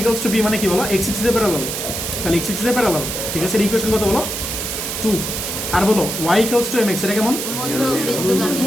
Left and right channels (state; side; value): noise; right; hiss, 4 dB below the sound